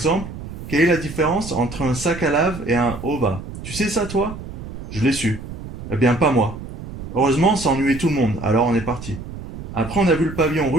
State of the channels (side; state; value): right; noise; rumble, 10 dB below the sound